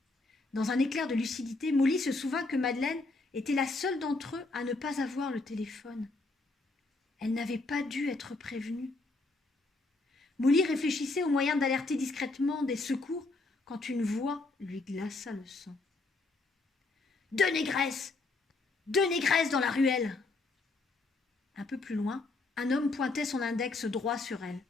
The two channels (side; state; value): right; quieter; 3.4 dB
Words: Dans un éclair de lucidité, Molly se souvint que Madeleine était la seule d'entre eux à ne pas avoir le téléphone. Elle n'avait pas dû être prévenue. Molly réfléchissait au moyen d'alerter discrètement des secours quand une voix lui glaça le sang. « Deux négresses dans la ruelle !» Un peu plus loin, un homme pointait son index droit sur elle.